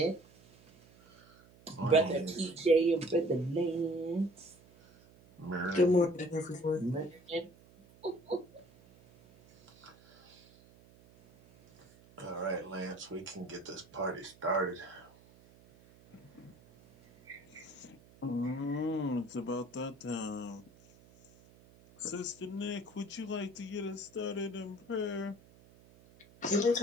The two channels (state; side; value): noise; right; hum, 25 dB below the sound